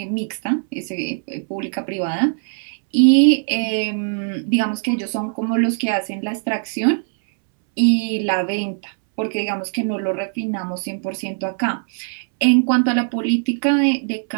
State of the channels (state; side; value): silent; left; 65 dB below the other